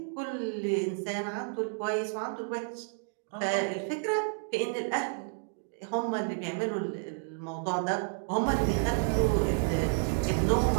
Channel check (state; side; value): silent; left; digital silence